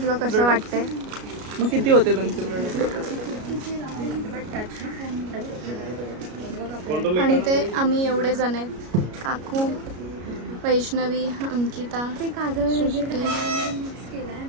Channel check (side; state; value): left; late; 33 ms